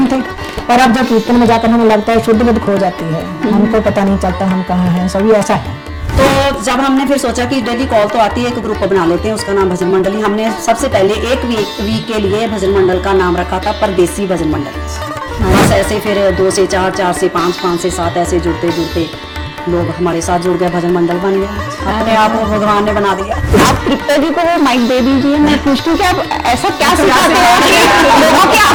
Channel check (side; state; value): both; identical; correlation 1.00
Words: थे, पर अब जब कीर्तन में जाकर हमें लगता है शुद्ध बुद्ध खो जाती है, हमको पता नहीं चलता हम कहाँ हैं, सभी ऐसा है। तो जब हमने फिर सोचा कि डेली कॉल तो आती है, एक ग्रुप बना लेते हैं, उसका नाम भजन मंडली। हमने सबसे पहले एक वीक के लिए भजन मंडल का नाम रखा था परदेसी भजन मंडल। बस ऐसे फिर 2 से 4, 4 से 5, 5 से 7 ऐसे जुड़ते जुड़ते लोग हमारे साथ जुड़ गए, भजन मंडल बन गया। अपने आप को भगवान ने बना दिया। आप तृप्ता जी को वो माइक दे दीजिए। मैं पूछती हूँ कि आप ऐसा क्या सिखाते हो कि लोगों की